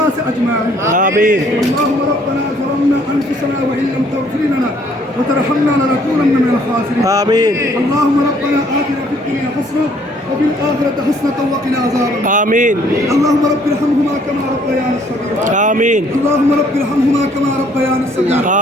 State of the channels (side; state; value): both; normal; correlation 0.62